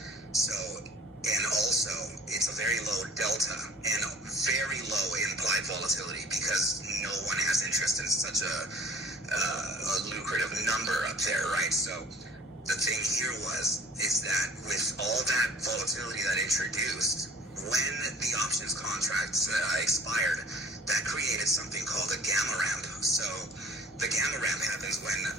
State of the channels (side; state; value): both; normal; correlation 0.49